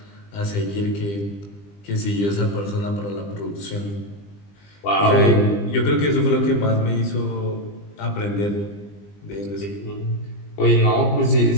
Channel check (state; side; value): late; right; 20 ms